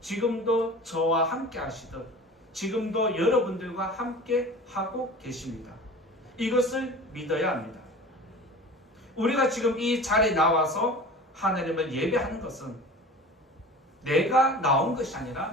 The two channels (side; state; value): both; normal; correlation 0.38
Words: 지금도 저와 함께 하시듯 지금도 여러분들과 함께 하고 계십니다. 이것을 믿어야 합니다. 우리가 지금 이 자리에 나와서 하나님을 예배하는 것은 내가 나온 것이